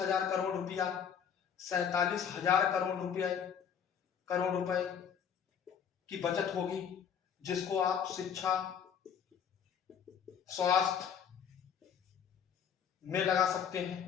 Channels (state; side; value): quieter; right; 7.8 dB